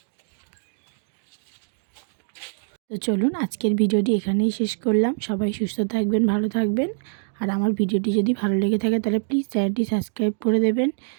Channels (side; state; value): left; silent; digital silence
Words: তো চলুন আজকের ভিডিওটি এখানেই শেষ করলাম। সবাই সুস্থ থাকবেন, ভালো থাকবেন। আর আমার ভিডিওটি যদি ভালো লেগে থাকে তাহলে প্লিজ চ্যানেলটি সাবস্ক্রাইব করে দেবেন।